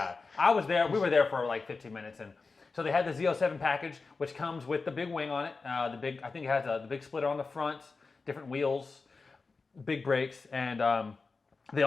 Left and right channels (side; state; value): right; quieter; 4.2 dB